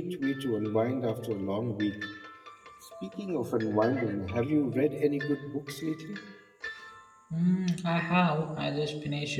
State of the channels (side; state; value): both; identical; correlation 1.00